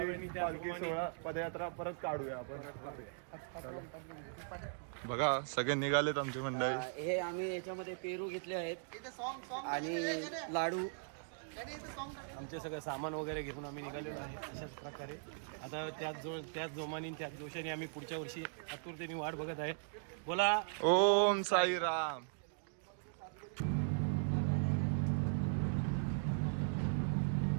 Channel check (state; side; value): silent; left; digital silence